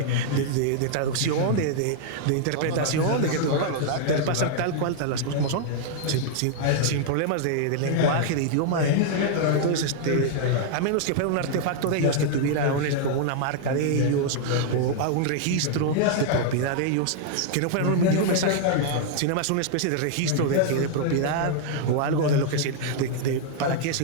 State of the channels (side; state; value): both; different; correlation -0.01